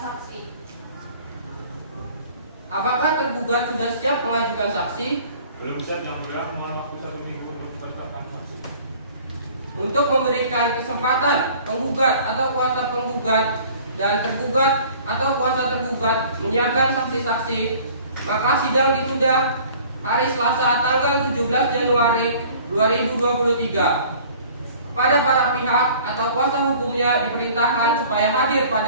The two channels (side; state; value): both; inverted; correlation -0.50